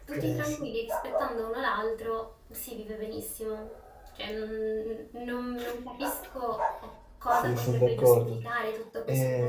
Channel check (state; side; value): identical; both; correlation 1.00